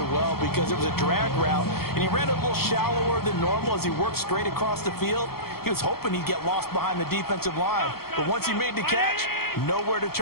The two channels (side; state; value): right; late; 0.94 ms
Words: well because it was a drag route, and he ran a little shallower than normal as he worked straight across the field. He was hoping he'd get lost behind the defensive line, but once he made the catch, nowhere to